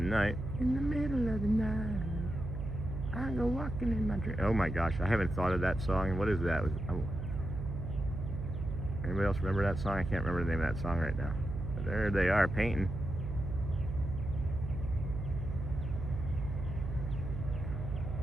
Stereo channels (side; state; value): right; noise; hum, 5 dB below the sound